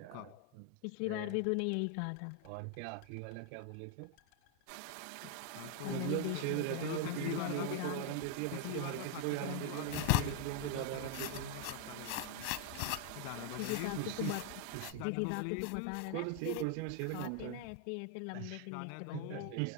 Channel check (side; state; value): both; different; correlation 0.00